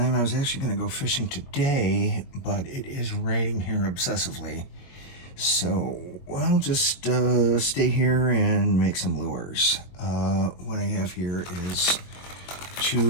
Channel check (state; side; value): late; right; 22 ms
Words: I was actually going to go fishing today, but it is raining here obsessively. So I'll just stay here and make some lures. What I have here is